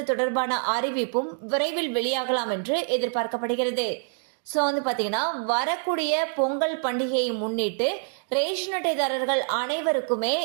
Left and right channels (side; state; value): left; silent; 61 dB below the other